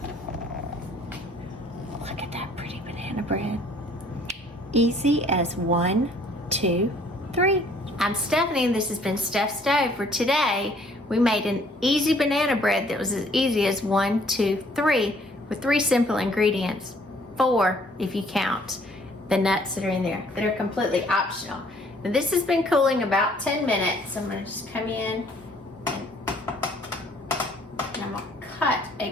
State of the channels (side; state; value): both; normal; correlation 0.60